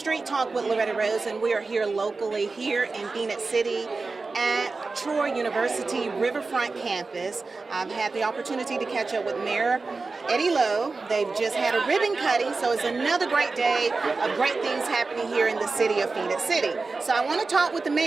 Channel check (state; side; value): quieter; left; 3.9 dB